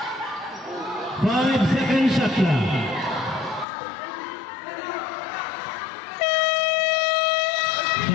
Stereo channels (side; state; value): right; drops out; at 3.7 s